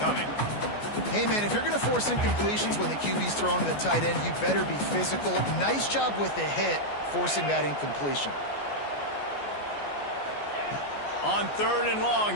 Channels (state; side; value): late; right; 14 ms